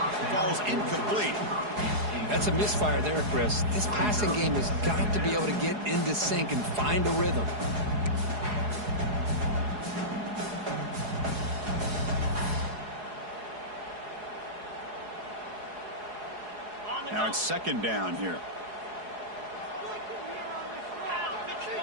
falls incomplete. That's a misfire there, Chris. This passing game has got to be able to get into sync and find a rhythm. Now it's 2nd down here.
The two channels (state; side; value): late; left; 4.8 ms